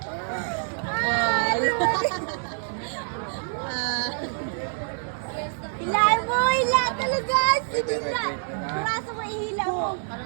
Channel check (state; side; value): silent; left; digital silence